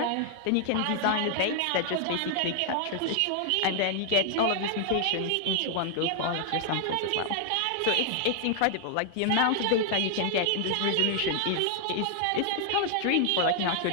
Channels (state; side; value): different; both; correlation 0.00